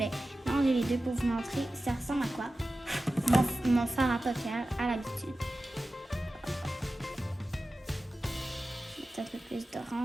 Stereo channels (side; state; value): both; normal; correlation 0.94